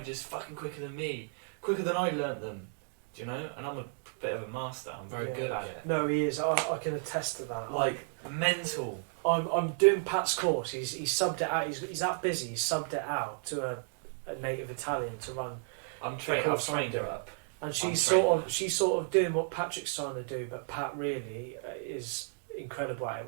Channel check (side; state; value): left; silent; 56 dB below the other